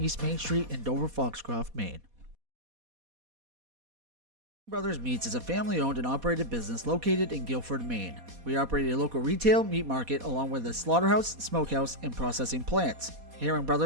Main Street in Dover Foxcroft, Maine. Brothers Meats is a family-owned and operated business located in Guilford, Maine. We operate a local retail meat market along with a slaughterhouse, smokehouse, and processing plants. Herring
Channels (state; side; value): late; left; 4.2 ms